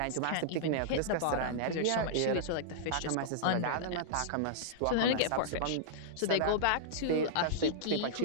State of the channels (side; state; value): both; different; correlation -0.02